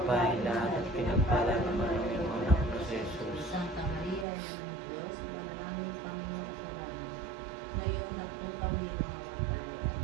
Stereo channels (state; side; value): drops out; left; at 4.2 s